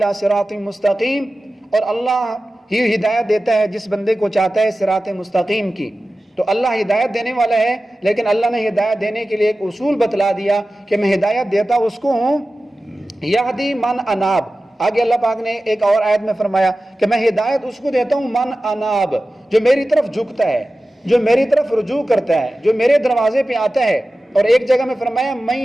صراط مستقیم، اور اللہ ہی ہدایت دیتا ہے جس بندے کو چاہتا ہے صراط مستقیم کی۔ تو اللہ ہدایت دینے والا ہے، لیکن اللہ نے ہدایت دینے کے لیے ایک اصول بتلا دیا کہ میں ہدایت دیتا اس کو ہوں یہدی من اناب۔ آگے اللہ پاک نے ایک اور آیت میں فرمایا کہ میں ہدایت اس کو دیتا ہوں من اناب، جو میری طرف جھکتا ہے، جو میری طرف رجوع کرتا ہے، جو میرے دروازے پہ آتا ہے۔ اور ایک جگہ میں فرمایا من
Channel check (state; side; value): normal; both; correlation 0.95